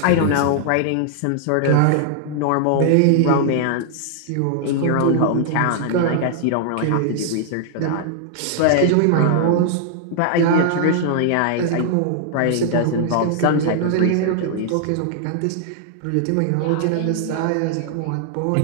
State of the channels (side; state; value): both; different; correlation -0.01